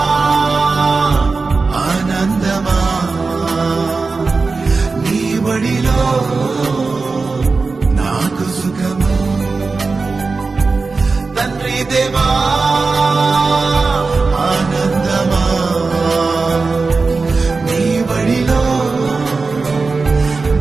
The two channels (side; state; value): left; quieter; 4.1 dB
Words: ఆనందమా నీ బడిలో నాకు సుఖము, తండ్రి దేవా ఆనందమా నీ బడిలో